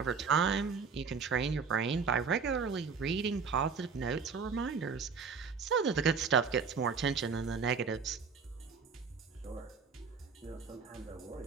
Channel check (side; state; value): left; quieter; 5.5 dB